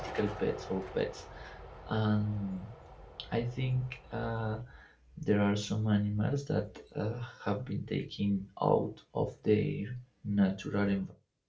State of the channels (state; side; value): identical; both; correlation 1.00